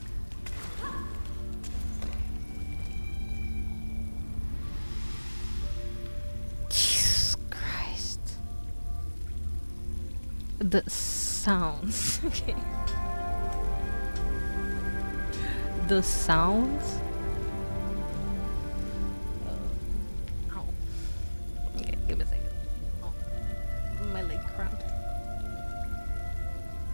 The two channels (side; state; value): both; inverted; correlation -1.00